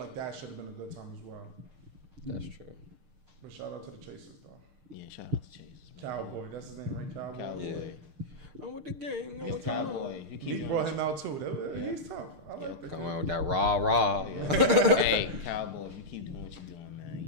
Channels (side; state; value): left; late; 6.6 ms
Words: like that should have been a good time as well. That's true. But shout out to the Chasers, though. Yeah, shout out to Chasers. Cowboy, that's his name, right? Cowboy. Yeah. I'm with the gang. I'm with Cowboy. He brought him out too. He's tough. I like that. Come on with that rah. Hey, Cowboy, if you keep doing what you're doing, man,